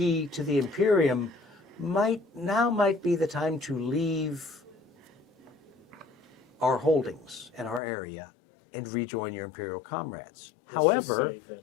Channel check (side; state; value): right; drops out; at 7.8 s